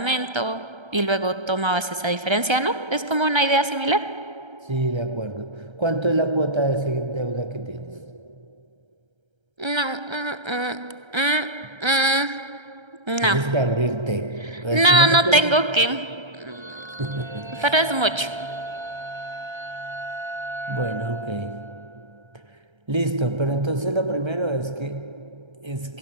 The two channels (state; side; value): late; left; 1.3 ms